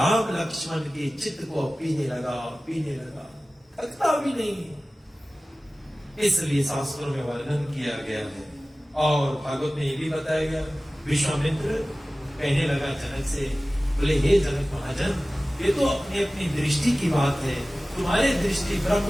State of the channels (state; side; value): normal; both; correlation 0.97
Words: लक्ष्मण के चित्त को पीने लगा, थकता भी नहीं। इसलिए शास्त्रों में वर्णन किया गया है। और भागवत में ये भी बताया गया, विश्वामित्र कहने लगा जनक से, बोले हे जनक महाजन, ये तो अपनी अपनी दृष्टि की बात है, तुम्हारी दृष्टि